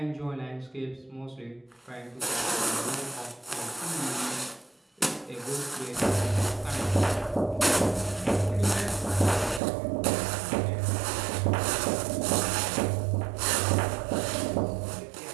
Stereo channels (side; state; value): left; drops out; at 9.6 s